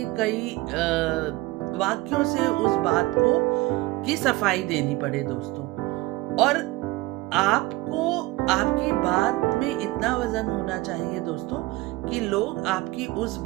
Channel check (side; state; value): left; quieter; 19.9 dB